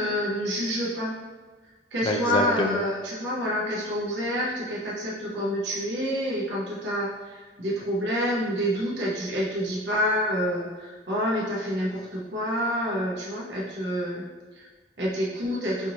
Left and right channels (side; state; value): both; normal; correlation 0.39